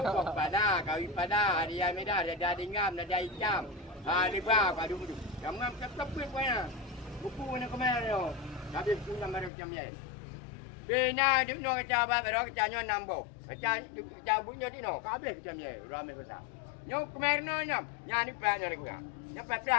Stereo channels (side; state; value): right; drops out; at 9.5 s